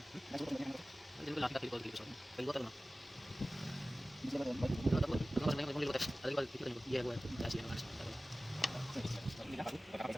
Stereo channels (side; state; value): both; normal; correlation 0.96